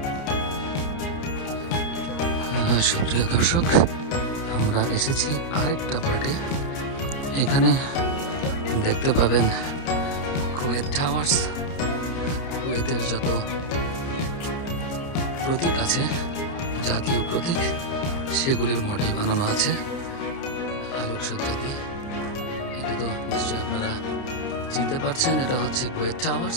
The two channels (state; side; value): late; right; 30 ms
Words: সুপ্রিয় দর্শক, আমরা এসেছি আরেকটা পার্টে। এখানে দেখতে পাবেন কুয়েত টাওয়ার্স, কুয়েতের যত প্রতীক আছে, জাতীয় প্রতীক, সেগুলির মডেল বানানো আছে আলোকসজ্জা দিয়ে। এটা তো নিশ্চয়ই আপনারা চিনতে পারছেন, এটা হচ্ছে কুয়েত টাওয়ার্স।